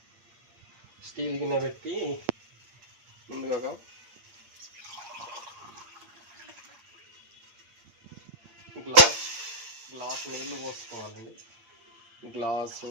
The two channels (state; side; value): late; left; 8.6 ms